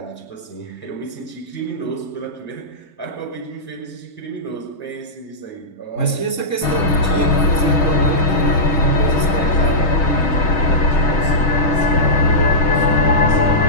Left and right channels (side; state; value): right; late; 3.8 ms